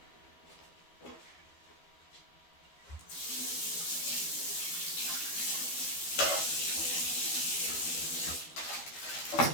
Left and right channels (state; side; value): late; right; 12 ms